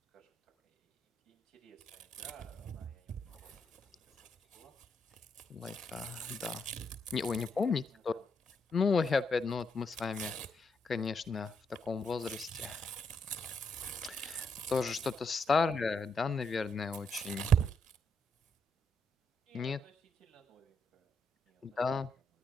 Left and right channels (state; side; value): normal; both; correlation 0.77